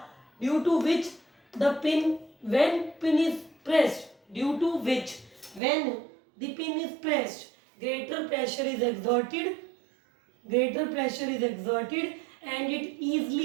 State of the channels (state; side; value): drops out; left; at 5.6 s